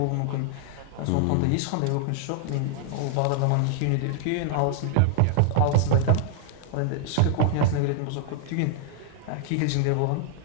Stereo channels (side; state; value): both; different; correlation -0.01